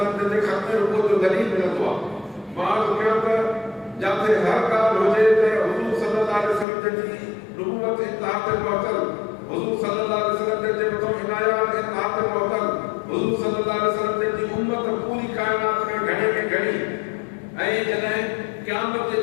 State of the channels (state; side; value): drops out; right; at 6.7 s